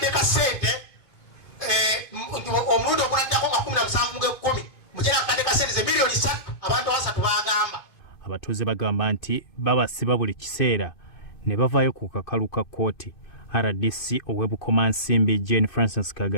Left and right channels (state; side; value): late; right; 2.5 ms